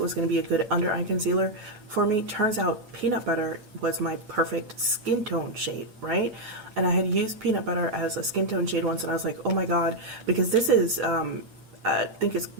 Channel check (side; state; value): left; late; 9.3 ms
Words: going to be a good under eye concealer for me. Turns out peanut butter was my perfect skin tone shade, right? And I had used peanut butter as a skin tone shade once, and I was like, oh my god, because this is, I think it's